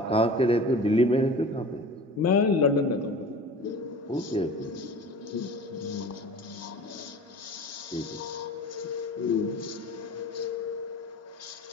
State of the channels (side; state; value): both; normal; correlation 0.39